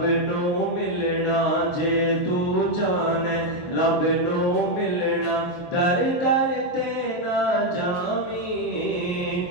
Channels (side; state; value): right; late; 23 ms